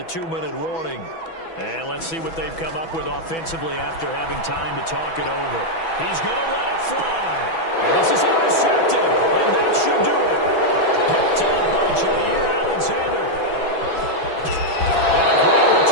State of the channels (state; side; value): late; right; 6.1 ms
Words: 2-minute warning. And let's see what they've come up with offensively after having time to talk it over. He's going to let it fly. And this is intercepted. And that should do it. Picked up by Jair Alexander. And a great